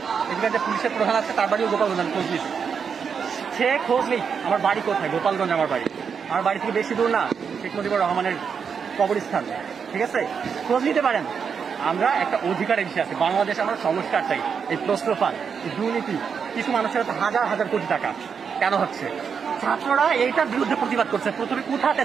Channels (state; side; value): quieter; left; 6.5 dB